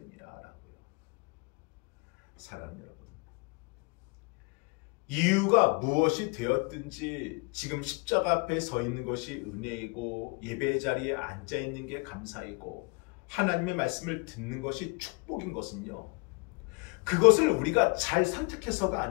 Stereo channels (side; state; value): right; quieter; 29.8 dB